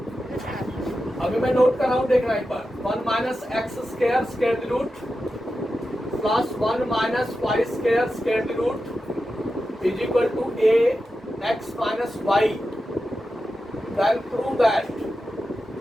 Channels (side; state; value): both; normal; correlation 0.91